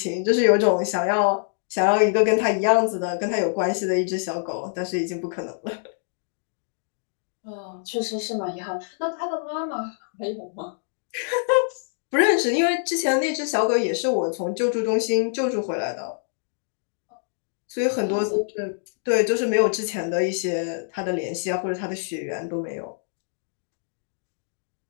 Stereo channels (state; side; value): silent; right; digital silence